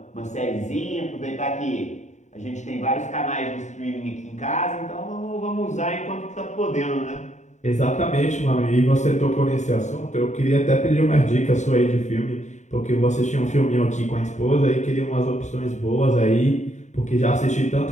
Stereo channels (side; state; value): right; late; 0.34 ms